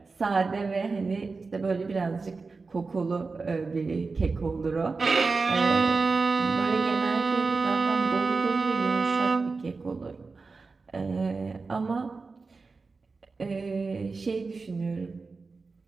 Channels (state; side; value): quieter; left; 4.2 dB